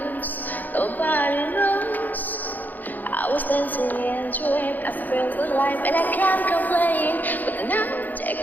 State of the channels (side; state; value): right; late; 0.084 ms